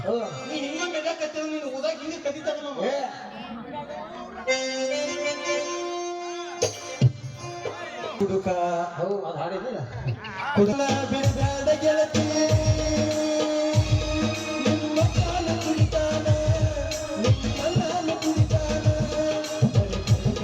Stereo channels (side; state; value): both; identical; correlation 1.00